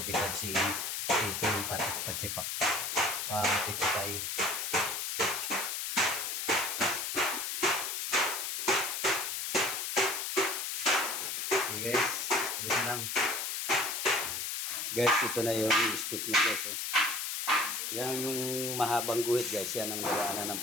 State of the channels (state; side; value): noise; left; hiss, 2 dB below the sound